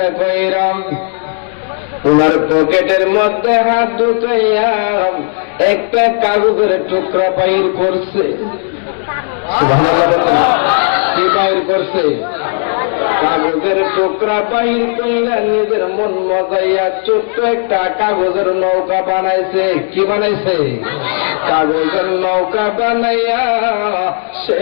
কইরাম, ওনার পকেটের মধ্যে হাত ঢুকাইয়া একটা কাগজের টুকরা বাইর করছে। কি বাইর করছে? কাগজের টুকরা বাইর কইরা নিজের মন মজাইয়া ছোট্ট একটা কাগজের নৌকা বানাইছে। কি বানাইছে? কাগজের নৌকা বানাইয়া সে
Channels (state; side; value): silent; right; 59 dB below the other